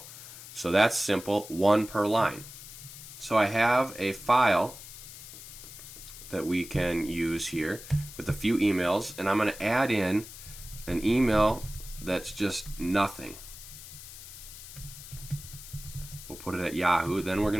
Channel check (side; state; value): left; noise; hiss, 14 dB below the sound